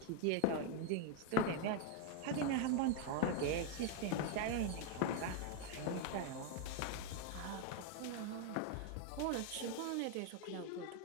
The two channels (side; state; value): both; different; correlation 0.01